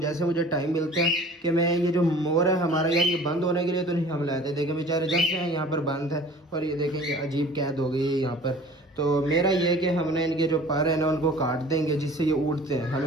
मुझे टाइम मिलता है कि मैं ये जो मोर है हमारा यार, ये बंद होने के लिए तो नहीं हम लाते। देखें बेचारे जब से हैं यहाँ पर बंद है, और ये देखें ये अजीब कैद हो गई है यहाँ पर। तो मेरा ये कि हमने इनके जो पर है ना उनको काट देंगे, जिससे ये उड़ते हैं। हमें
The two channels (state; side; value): normal; both; correlation 0.46